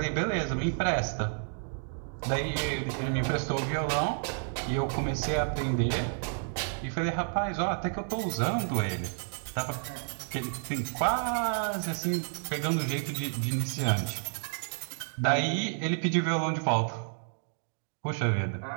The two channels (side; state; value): left; silent; digital silence